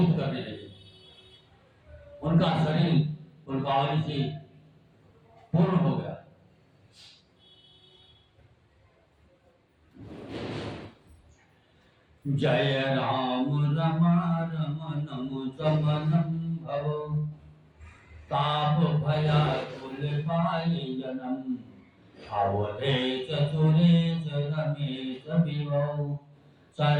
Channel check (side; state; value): both; identical; correlation 1.00